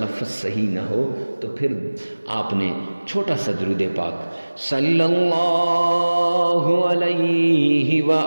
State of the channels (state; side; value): inverted; both; correlation -1.00